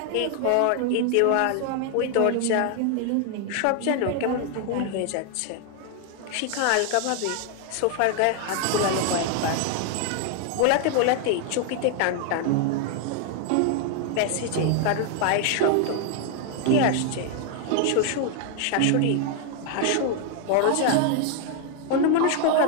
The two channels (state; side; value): different; both; correlation 0.00